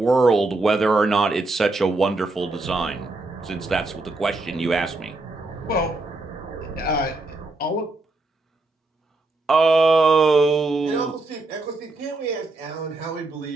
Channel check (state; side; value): quieter; left; 3.1 dB